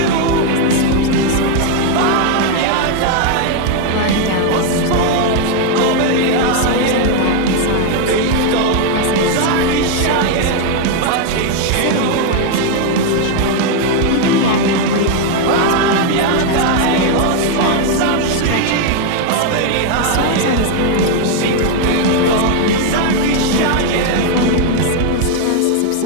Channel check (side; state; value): both; different; correlation 0.01